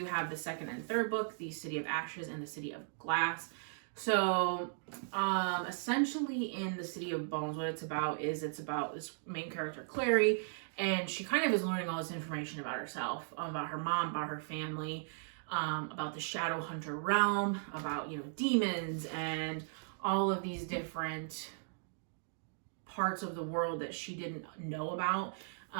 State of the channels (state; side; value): silent; left; digital silence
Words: have the second and third book, the City of Ashes and the City of Glass. So, essentially in the City of Bones, what it's about is this main character, Clare, and she kind of is learning all this information about herself, about her mom, about her family, about the Shadow Hunter realm, about, you know, demons, and all of these different parts of the world that she didn't know about.